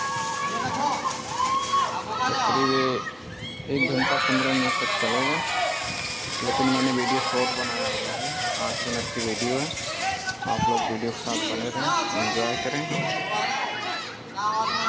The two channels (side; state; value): both; identical; correlation 1.00